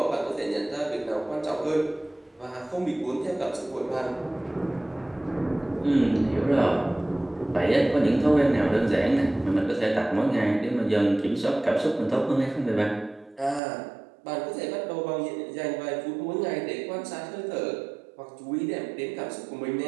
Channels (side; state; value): left; drops out; at 13.6 s